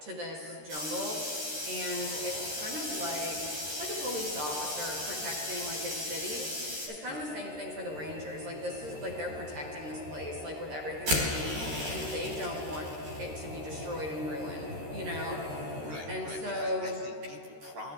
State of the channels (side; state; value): left; late; 13 ms